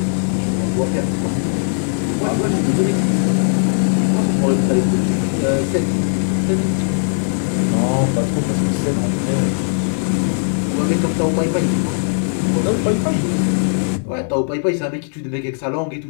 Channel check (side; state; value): right; silent; digital silence